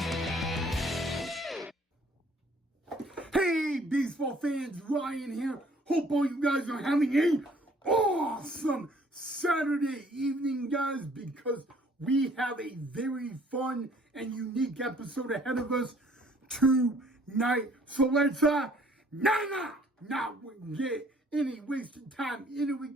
Hey, baseball fans, Ryan here. Hope all you guys are having a awesome Saturday evening, guys, because we have a very fun and unique episode ahead of us tonight. So let's not get any wasted time into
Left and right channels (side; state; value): both; normal; correlation 0.59